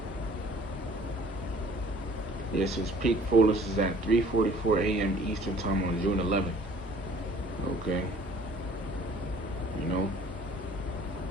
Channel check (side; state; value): both; normal; correlation 0.53